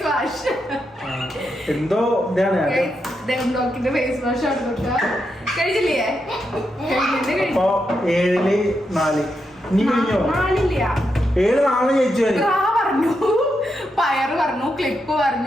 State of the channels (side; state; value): both; normal; correlation 0.84